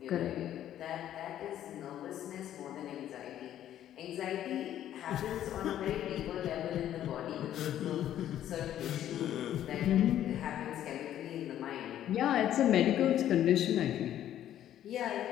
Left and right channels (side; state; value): right; quieter; 11.5 dB